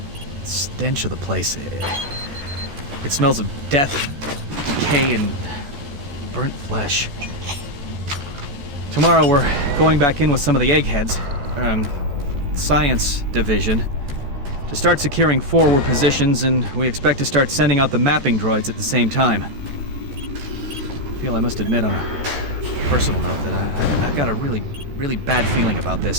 stench of the place, it smells of death, decay, and burnt flesh. Tomorrow we're going back in with some of the eggheads. science division to start securing forward positions, and we expect to start sending out the mapping droids at the same time. I feel I must admit on a personal note that I've got a really, really bad feeling about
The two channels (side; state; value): left; late; 14 ms